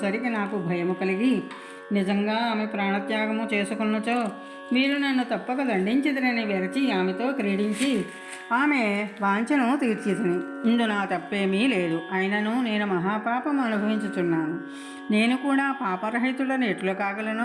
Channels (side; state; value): both; identical; correlation 1.00